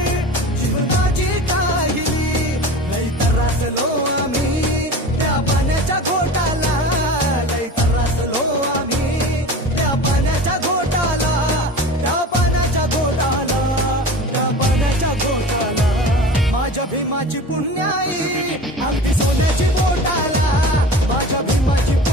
जीवनाची काहिली लई त्रासलो आम्ही त्या पाण्याच्या घोटाला लई त्रासलो आम्ही त्या पाण्याच्या घोटाला त्या पाण्याच्या घोटाला त्या पाण्याच्या घोटाला माझ्या भीमाची पुण्याई अगदी सोन्याची बोटाला माझ्या भीमाची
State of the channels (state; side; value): normal; both; correlation 0.36